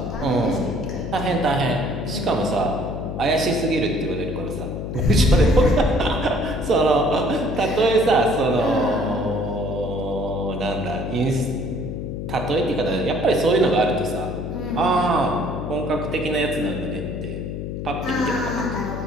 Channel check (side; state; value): left; noise; hum, 5 dB below the sound